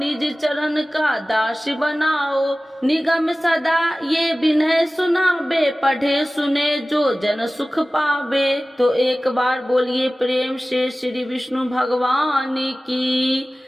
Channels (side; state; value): both; normal; correlation 0.97